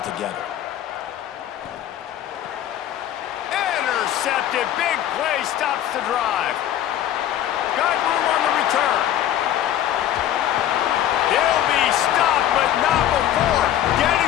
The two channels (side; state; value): right; quieter; 11.6 dB